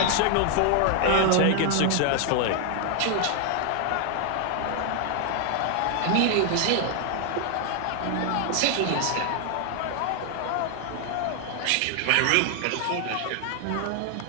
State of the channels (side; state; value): both; different; correlation 0.00